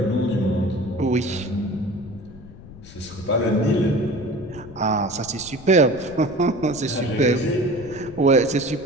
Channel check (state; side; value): noise; left; rumble, 17 dB below the sound